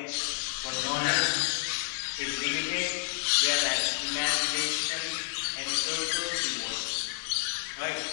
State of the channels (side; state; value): right; silent; 58 dB below the other